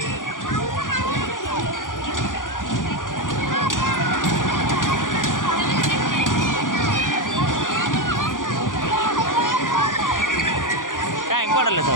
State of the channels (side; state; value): right; late; 0.89 ms